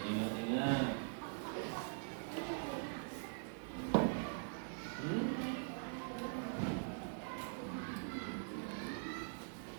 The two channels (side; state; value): left; silent; digital silence